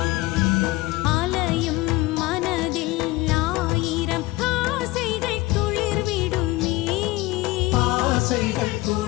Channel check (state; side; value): quieter; right; 19.8 dB